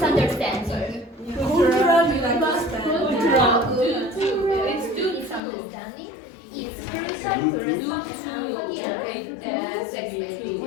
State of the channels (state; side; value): drops out; right; at 5.4 s